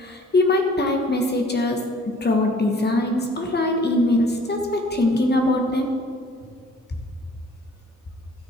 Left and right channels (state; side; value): normal; both; correlation 0.54